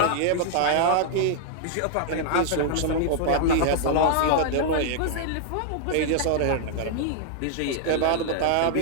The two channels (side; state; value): both; different; correlation -0.01